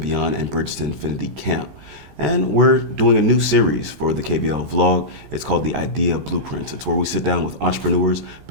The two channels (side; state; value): left; late; 14 ms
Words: and Bridge to Infinity Camp. And we're doing a new series for the KVL vlog. It's called The Idea Blueprint. It's where we sit down with entrepreneurs,